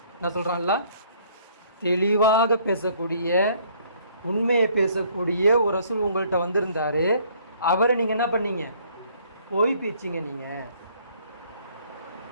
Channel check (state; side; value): inverted; both; correlation -0.60